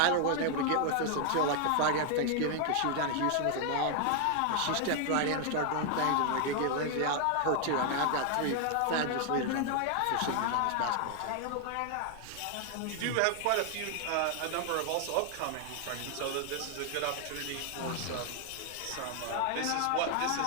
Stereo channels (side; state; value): both; different; correlation 0.00